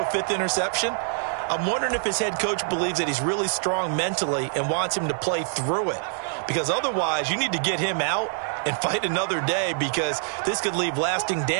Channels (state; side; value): silent; left; digital silence